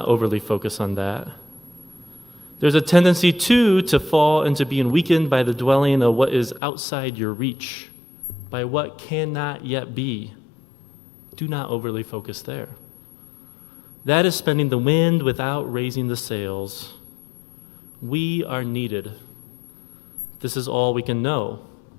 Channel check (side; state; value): right; drops out; at 6.6 s